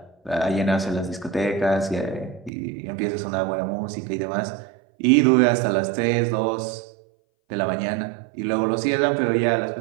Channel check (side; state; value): left; drops out; at 2.5 s